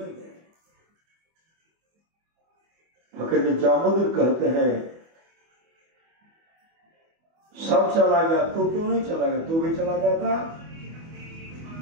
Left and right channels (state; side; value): late; left; 24 ms